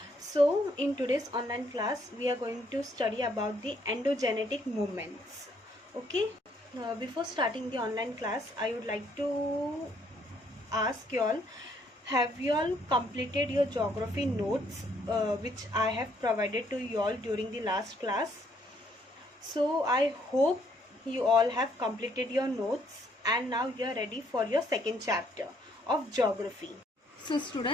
So in today's online class, we are going to study about the endogenetic movements. Okay. Before starting the online class, I would like to ask you all, have you all completed your geography notes which I have provided to you all during the last class? So I hope you all have completed your notes and now you are ready for your second chapter of geography. So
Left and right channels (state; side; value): normal; both; correlation 0.68